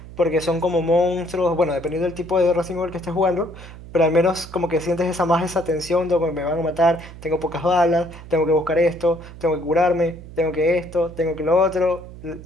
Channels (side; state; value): right; noise; hum, 16 dB below the sound